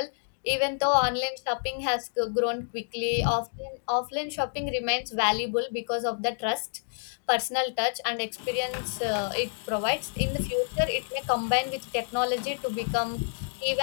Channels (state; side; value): silent; right; digital silence